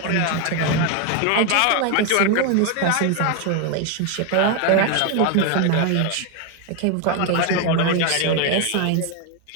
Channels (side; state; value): both; different; correlation 0.01